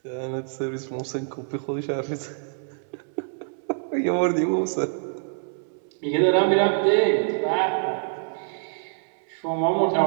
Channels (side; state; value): left; silent; 61 dB below the other